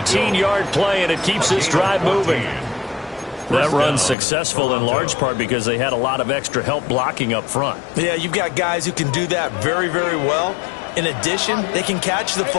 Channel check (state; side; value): drops out; right; at 4.2 s